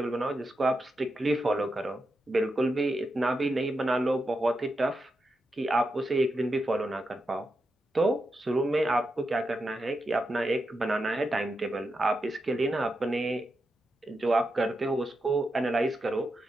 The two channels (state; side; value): normal; both; correlation 0.87